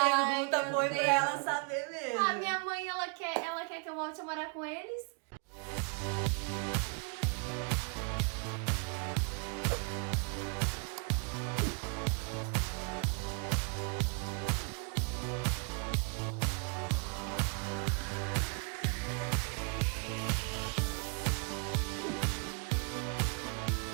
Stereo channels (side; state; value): left; quieter; 36.4 dB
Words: foi pra ela saber mesmo. A minha mãe, ela quer que eu volte a morar com eles.